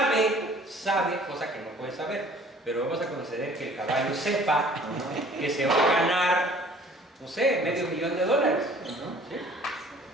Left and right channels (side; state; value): both; normal; correlation 0.53